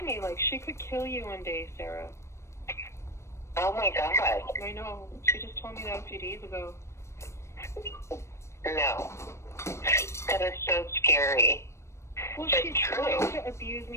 me like she could kill you one day, Sarah. Oh my God. I know. She just told me that a few days ago. No. That is so scary. Well, she's trying to abuse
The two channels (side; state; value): right; late; 0.13 ms